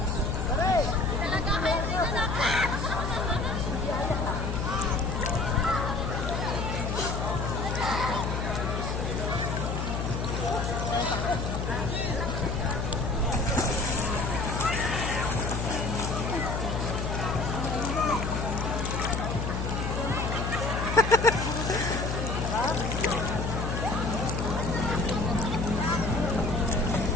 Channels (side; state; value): left; noise; hum, 1 dB below the sound